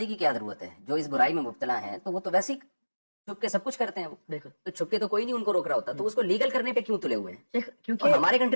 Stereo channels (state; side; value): inverted; both; correlation -1.00